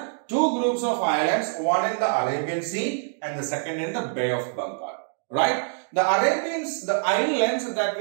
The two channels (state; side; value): silent; left; digital silence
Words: two groups of islands, one in the Arabian Sea and the second in the Bay of Bengal. Right? The islands that